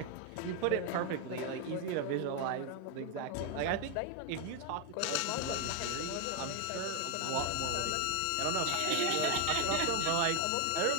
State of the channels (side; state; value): both; different; correlation 0.01